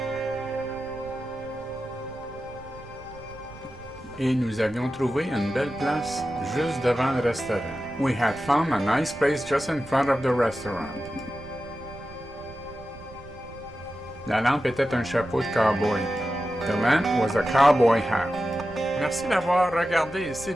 Et nous avions trouvé une belle place juste devant le restaurant. We had found a nice place just in front of the restaurant. La lampe était un chapeau de cowboy. The lamp was a cowboy hat. Merci d'avoir regardé. S'il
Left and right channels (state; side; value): noise; right; rumble, 19 dB below the sound